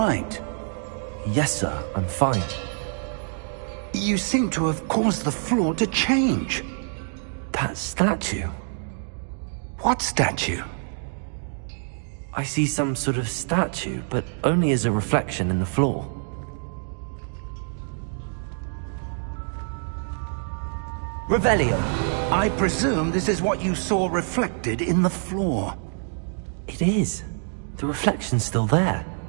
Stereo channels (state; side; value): silent; left; 61 dB below the other